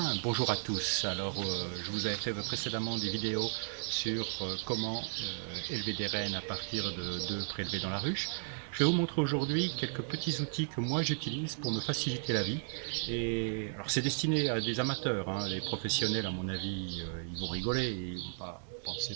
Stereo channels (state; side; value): silent; left; digital silence